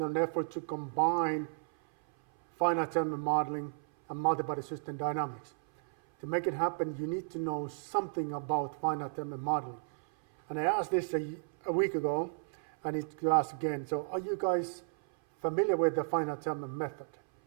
an effort to combine finite element modeling and multibody system dynamics. To make it happen, you need to know something about finite element modeling. And I asked this a week ago, and it's asked again. So are you guys familiar with the finite element method?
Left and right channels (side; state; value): left; silent; 55 dB below the other